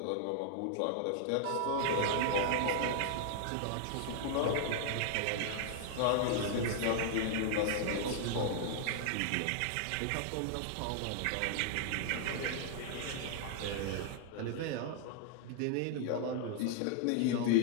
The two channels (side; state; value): both; different; correlation 0.00